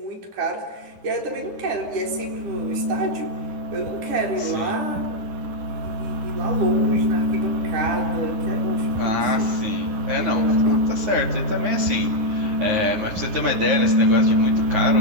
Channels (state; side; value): late; left; 9.7 ms